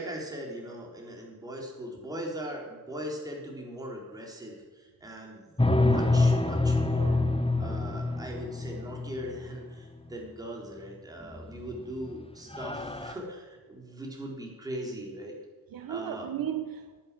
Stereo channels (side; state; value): both; normal; correlation 0.79